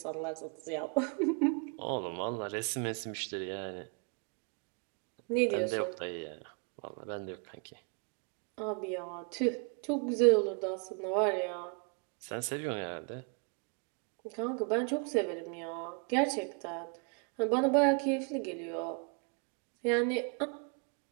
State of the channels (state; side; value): quieter; left; 37.3 dB